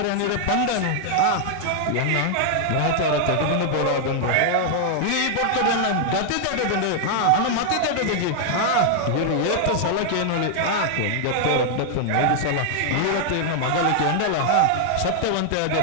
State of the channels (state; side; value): different; both; correlation 0.00